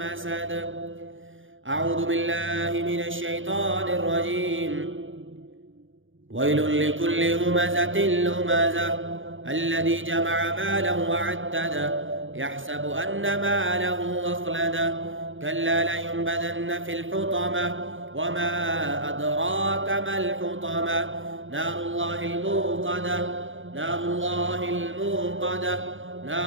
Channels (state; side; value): late; left; 0.57 ms